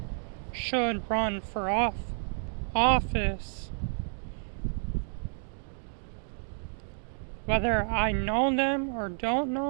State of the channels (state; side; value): silent; left; 58 dB below the other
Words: should run for office. Whether I know them or don't